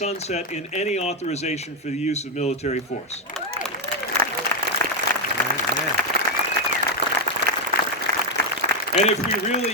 in any authorization for the use of military force. And if we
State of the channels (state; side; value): normal; both; correlation 0.04